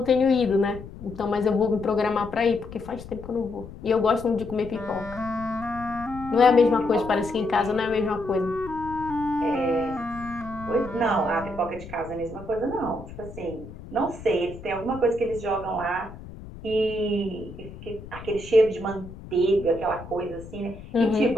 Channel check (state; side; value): noise; left; rumble, 15 dB below the sound